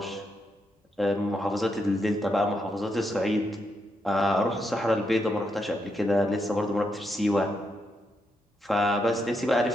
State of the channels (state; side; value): normal; both; correlation 0.81